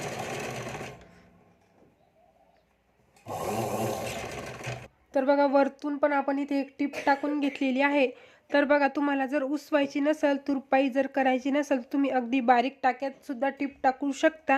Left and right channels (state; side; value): identical; both; correlation 1.00